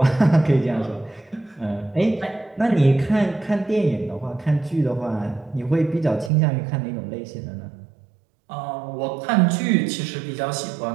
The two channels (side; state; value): left; drops out; at 6.3 s